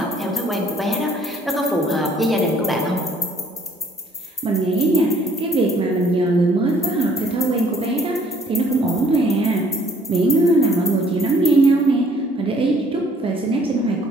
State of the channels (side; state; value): both; normal; correlation 0.60